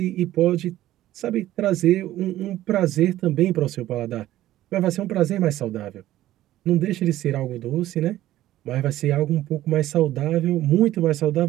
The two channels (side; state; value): left; quieter; 14.4 dB